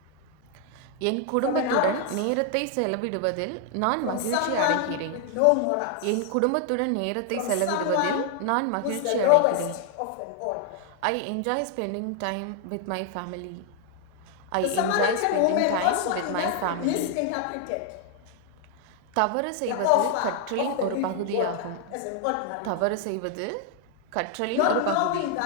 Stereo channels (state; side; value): different; both; correlation 0.00